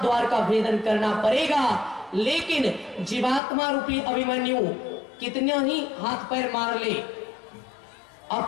द्वार का भेदन करना पड़ेगा। लेकिन जीवात्मा रूपी अभिमन्यु कितने ही हाथ पैर मार ले,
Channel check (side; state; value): right; drops out; at 3.4 s